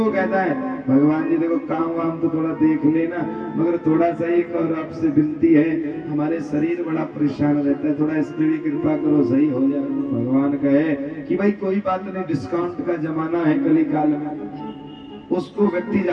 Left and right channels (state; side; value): identical; both; correlation 1.00